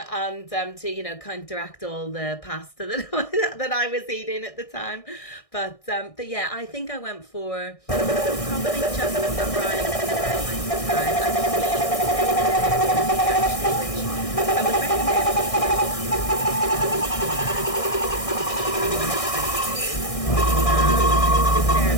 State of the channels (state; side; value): late; right; 1.6 ms